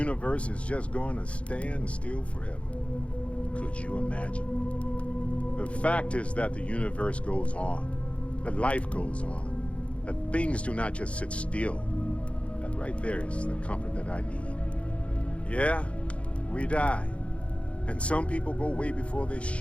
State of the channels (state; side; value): late; right; 0.062 ms